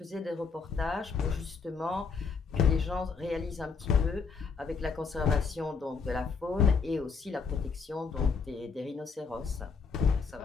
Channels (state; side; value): quieter; right; 5.2 dB